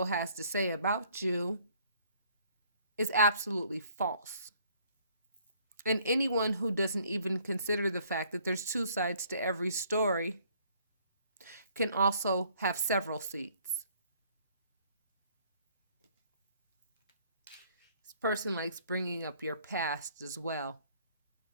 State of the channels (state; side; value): inverted; both; correlation -0.60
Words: has to say about you is absolutely false. And anyone who doesn't even consider the fact that there's 2 sides to every story can also have several seats. This person likes bringing up your past as well.